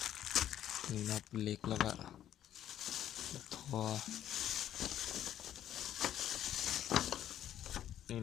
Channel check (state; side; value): quieter; right; 11.2 dB